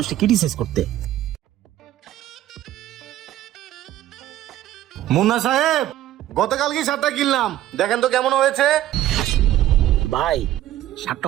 ক্রিটিসাইজ করতে। মুন্না সাহেব, গতকালকে শার্টটা কিনলাম, দেখেন তো কেমন হয়েছে। ভাই শার্টটা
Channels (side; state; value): left; quieter; 13.2 dB